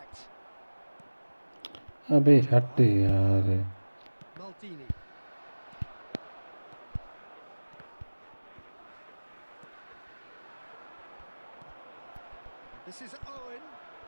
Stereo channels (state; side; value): inverted; both; correlation -1.00